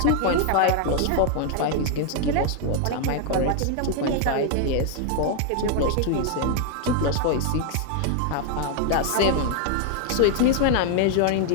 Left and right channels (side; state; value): both; different; correlation 0.00